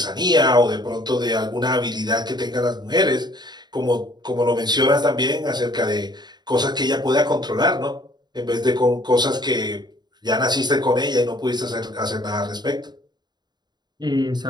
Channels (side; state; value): left; late; 0.21 ms